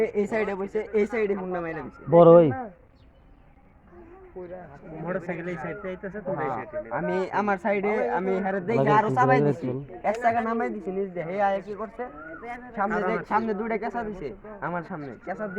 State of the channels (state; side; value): identical; both; correlation 1.00